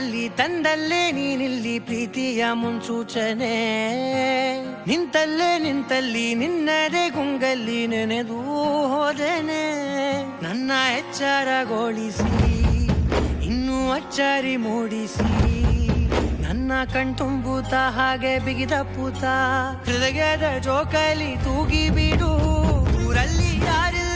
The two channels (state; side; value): identical; both; correlation 1.00